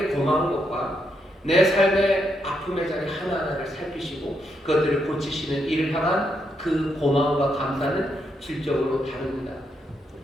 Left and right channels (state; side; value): normal; both; correlation 0.79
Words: 고마운 것과 내 삶의 아픔의 자리 하나하나를 살피시고 그것들을 고치시는 일을 향한 그 고마움과 감사는 질적으로 다릅니다.